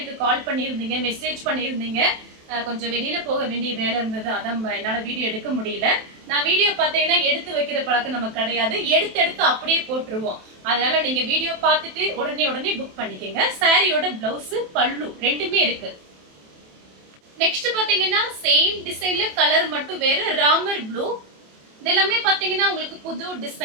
கால் பண்ணியிருந்தீங்க, மெசேஜ் பண்ணியிருந்தீங்க. கொஞ்சம் வெளியில போக வேண்டிய வேலை இருந்தது, அதான் என்னால வீடியோ எடுக்க முடியல. நான் வீடியோ பாத்தீங்கன்னா எடுத்து வைக்கிற பழக்கம் நமக்கு கிடையாது. எடுத்து அப்படியே போட்டுருவோம். அதனால நீங்க வீடியோ பார்த்துட்டு உடனே புக் பண்ணிக்கங்க. சாரியோட பிளவுஸ், பல்லு ரெண்டுமே இருக்கு. நெக்ஸ்ட் பாத்தீங்கன்னா சேம் டிசைன்ல கலர் மட்டும் வேற, ராமர் ப்ளூ. இதெல்லாமே பாத்தீங்கன்னா உங்களுக்கு புது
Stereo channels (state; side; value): late; left; 27 ms